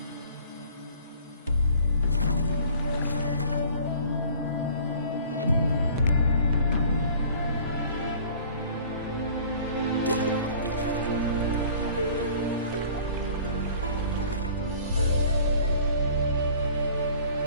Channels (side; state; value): both; inverted; correlation -0.49